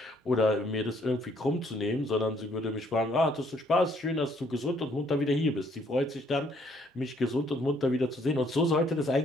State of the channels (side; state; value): both; normal; correlation 0.66